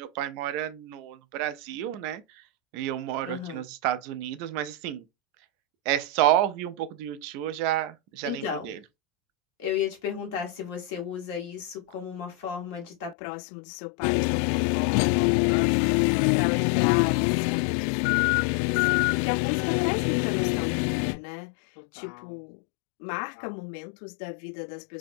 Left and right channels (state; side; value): drops out; right; at 13.2 s